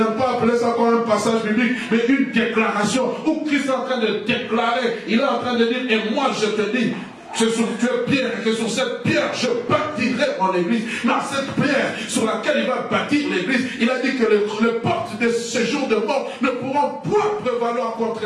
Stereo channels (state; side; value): identical; both; correlation 1.00